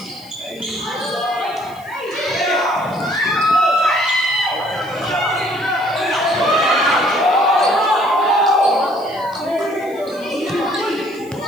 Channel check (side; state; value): left; noise; hiss, 25 dB below the sound